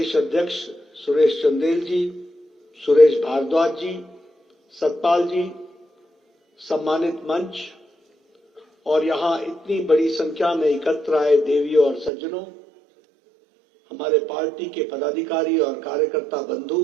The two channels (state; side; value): drops out; left; at 12.1 s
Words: अध्यक्ष सुरेश चंदेल जी, सुरेश भारद्वाज जी, सतपाल जी, सम्मानित मंच और यहाँ इतनी बड़ी संख्या में एकत्र आए देवियों और सज्जनों, हमारे पार्टी के पदाधिकारी और कार्यकर्ता बंधु